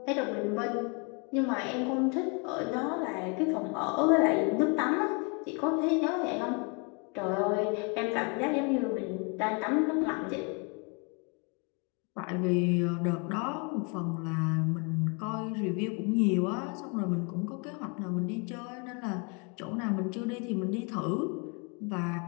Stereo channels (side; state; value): right; quieter; 34.1 dB